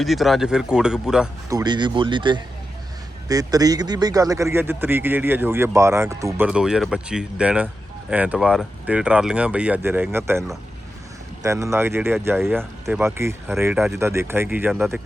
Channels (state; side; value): normal; both; correlation 0.89